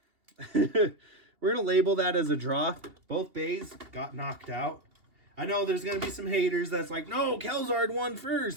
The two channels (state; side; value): late; left; 2.8 ms